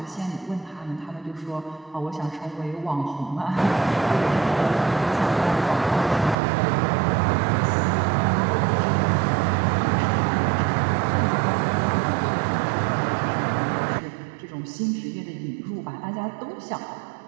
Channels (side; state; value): left; drops out; at 6.4 s